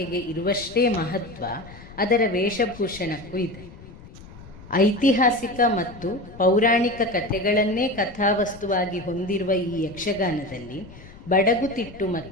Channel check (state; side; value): noise; left; rumble, 18 dB below the sound